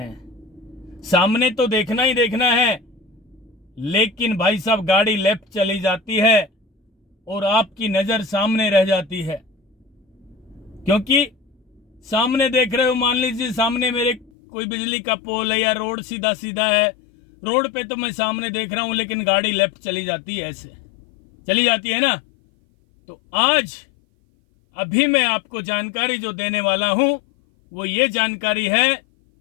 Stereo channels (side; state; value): right; drops out; at 14.3 s